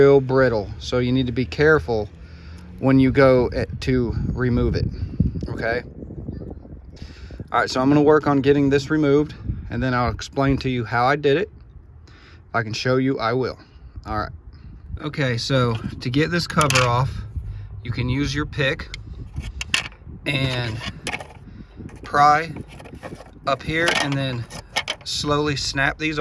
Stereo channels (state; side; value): identical; both; correlation 1.00